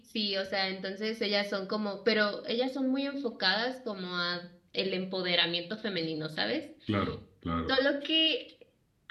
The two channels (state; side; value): identical; both; correlation 1.00